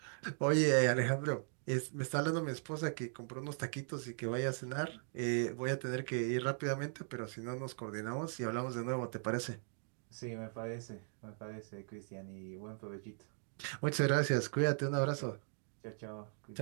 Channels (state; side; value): silent; left; 52 dB below the other